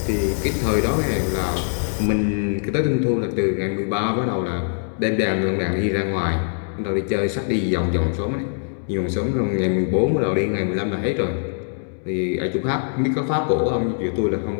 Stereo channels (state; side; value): silent; right; digital silence